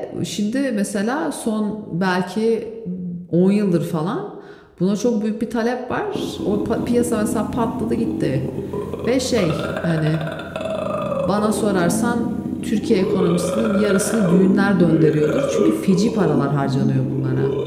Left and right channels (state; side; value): identical; both; correlation 1.00